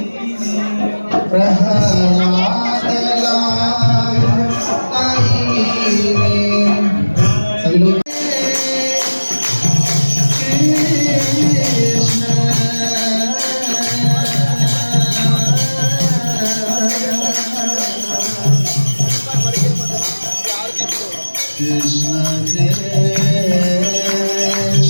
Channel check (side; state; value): both; inverted; correlation -1.00